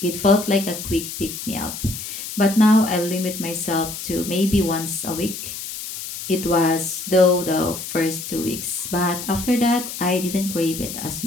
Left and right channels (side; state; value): left; noise; hiss, 8 dB below the sound